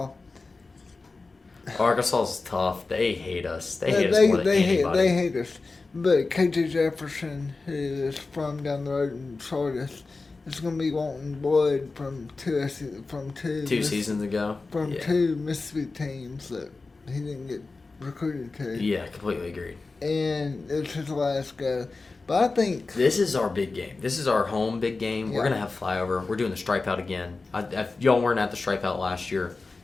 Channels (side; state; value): right; quieter; 3.8 dB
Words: Arkansas's tough. They hate us. They hate us more than anybody. They hate us. But KJ Jefferson, who is from down the road in Sardis, is going to be wanting blood from two seasons ago. From two Mississippi teams that he didn't get recruited to. Yeah, completely agreed. And it's his last go. But I think... This is our big game. This is our home big game. Yeah. We're going to have flyover. We're doing the Stripe Out again. If y'all weren't at the Stripe Out last year,